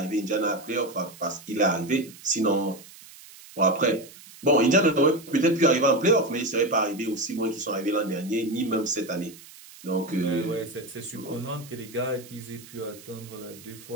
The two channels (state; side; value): noise; right; hiss, 20 dB below the sound